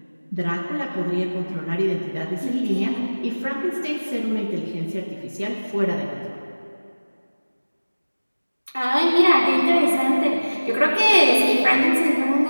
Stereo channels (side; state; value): both; inverted; correlation -1.00